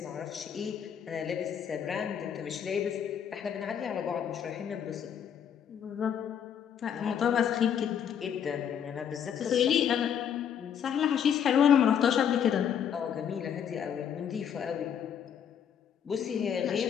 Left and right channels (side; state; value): right; quieter; 8.5 dB